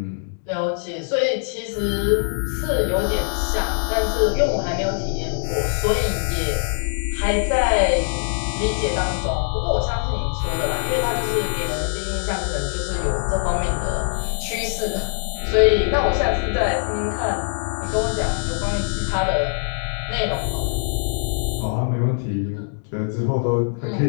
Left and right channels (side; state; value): right; silent; digital silence